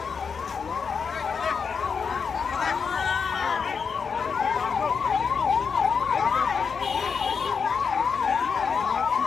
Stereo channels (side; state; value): right; quieter; 5.9 dB